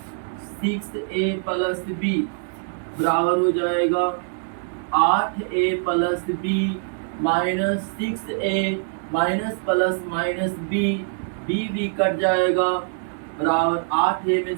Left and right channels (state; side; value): silent; left; digital silence